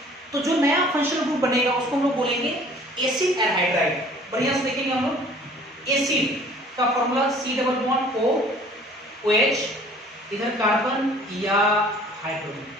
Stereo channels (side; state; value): both; normal; correlation 0.52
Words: तो जो नया फंक्शनल ग्रुप बनेगा उसको हम लोग बोलेंगे एसिड एनहाइड्राइड। बढ़िया से देखेंगे हम लोग, एसिड का formula C double bond O OH, इधर कार्बन या हाइड्रोजन,